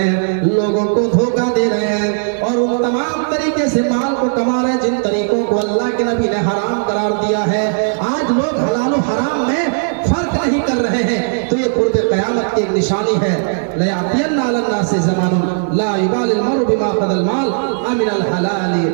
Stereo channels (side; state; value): left; silent; digital silence